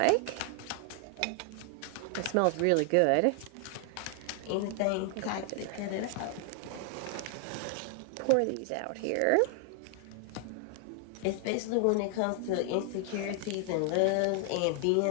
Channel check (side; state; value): both; different; correlation 0.00